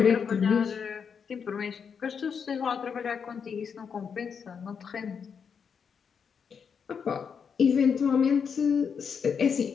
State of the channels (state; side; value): quieter; right; 6.6 dB